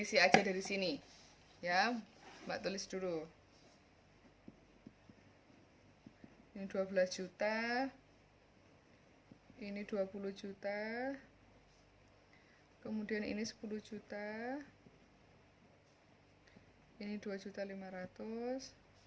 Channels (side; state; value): both; identical; correlation 1.00